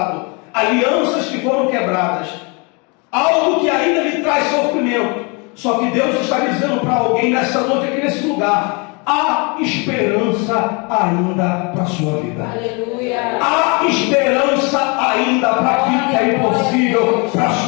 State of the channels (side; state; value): right; quieter; 31.4 dB